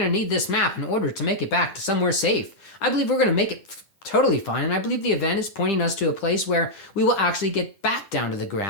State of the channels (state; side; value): late; right; 10 ms